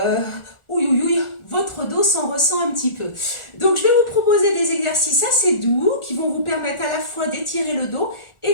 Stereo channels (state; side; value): late; right; 1.4 ms